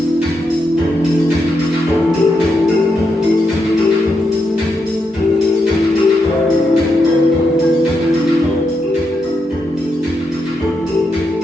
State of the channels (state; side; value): normal; both; correlation 0.83